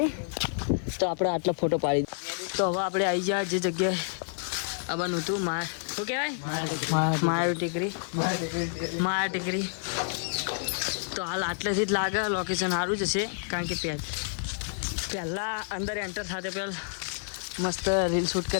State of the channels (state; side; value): silent; right; 56 dB below the other